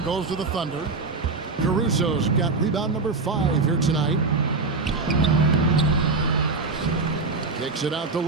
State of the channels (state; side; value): quieter; left; 3.9 dB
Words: goes to the Thunder. Caruso's got rebound number 5 here tonight. Kicks it out to